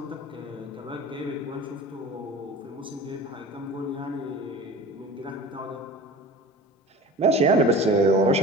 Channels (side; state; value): both; normal; correlation 0.38